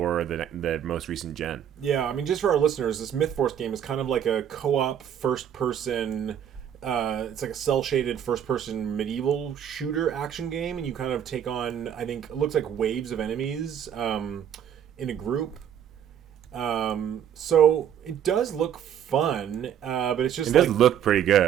the most recent gen. Yeah, I mean, just for our listeners, this Myth Force game is kind of like a co-op first-person. It's like a cel-shaded first-person medieval shooter action game, and you kind of take on, I think, it looks like waves of enemies in a group. So it does look fun, but it's just it does look pretty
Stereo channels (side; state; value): left; quieter; 9.4 dB